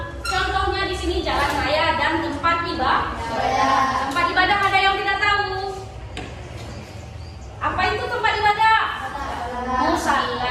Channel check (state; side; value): identical; both; correlation 1.00